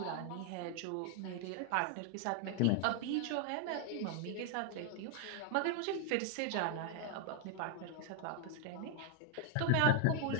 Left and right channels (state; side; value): different; both; correlation 0.00